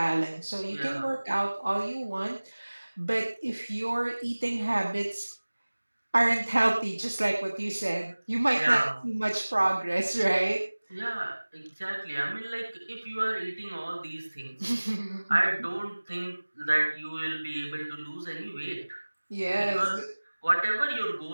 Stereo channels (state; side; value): inverted; both; correlation -1.00